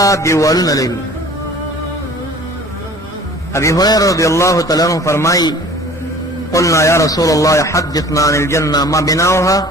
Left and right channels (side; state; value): both; normal; correlation 0.47